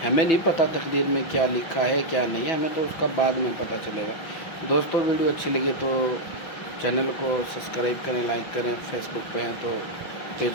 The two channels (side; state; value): right; late; 5.9 ms